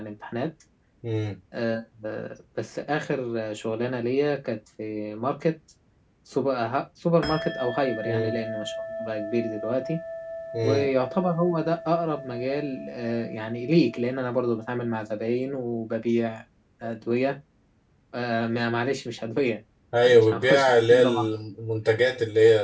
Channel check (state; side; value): identical; both; correlation 1.00